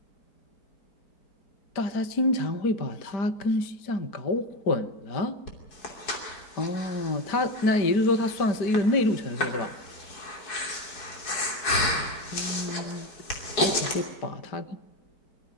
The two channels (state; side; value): late; right; 4.7 ms